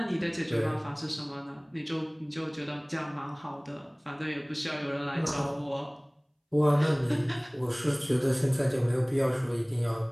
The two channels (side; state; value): both; identical; correlation 1.00